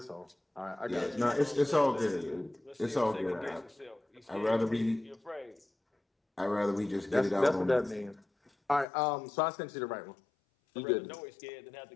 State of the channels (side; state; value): right; drops out; at 8.8 s